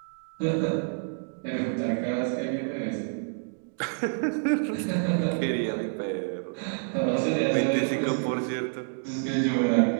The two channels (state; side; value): silent; left; digital silence